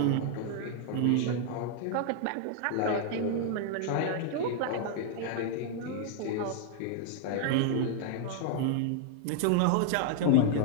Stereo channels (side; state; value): both; different; correlation 0.00